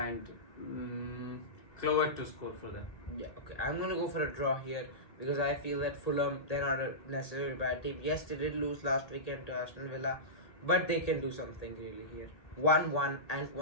Clover to score for them. Yeah, okay. I'm going to go for a draw here because I feel that Fulham, they're not a necessarily bad team. Yes, they did lose last weekend to Aston Villa, but they can do something really here. 1-1 and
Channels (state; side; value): late; right; 1.8 ms